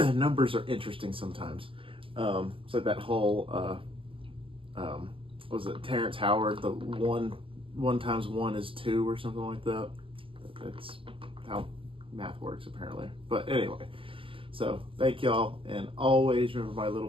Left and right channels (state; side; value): late; left; 0.25 ms